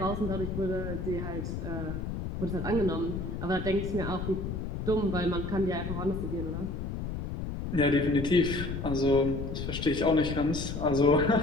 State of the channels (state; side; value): noise; left; rumble, 4 dB below the sound